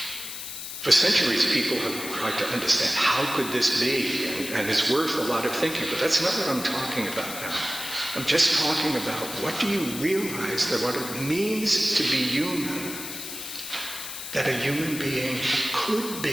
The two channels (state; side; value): noise; left; hiss, 8 dB below the sound